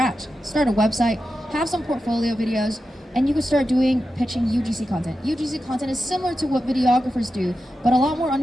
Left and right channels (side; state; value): both; normal; correlation 0.90